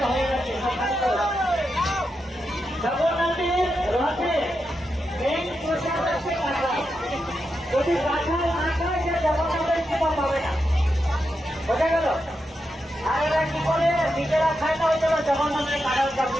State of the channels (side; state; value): both; normal; correlation 0.86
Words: হয়ে গেছে, সব খালি করো। জগন্নাথের রথে মেন প্রসাদ আছে কাঁঠাল। যদি কাঁঠাল না খায় সে জগন্নাথের কৃপা পাবে না, বোঝা গেল? আর এরা কি করে নিজেরা খায় না, ওই জন্য জগন্নাথের কাঁঠাল